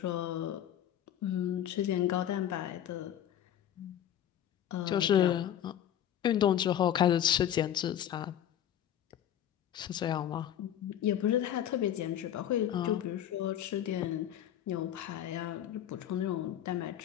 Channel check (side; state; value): right; quieter; 10.7 dB